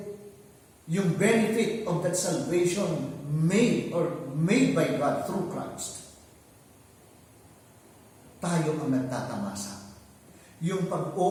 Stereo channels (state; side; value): identical; both; correlation 1.00